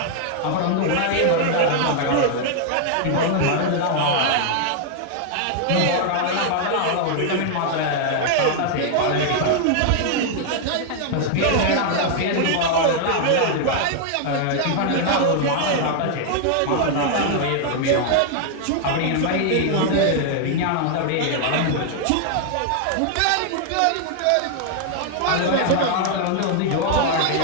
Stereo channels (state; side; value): different; both; correlation 0.00